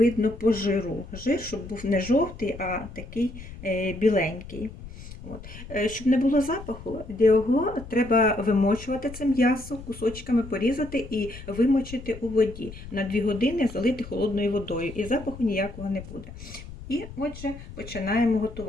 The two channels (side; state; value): left; noise; rumble, 14 dB below the sound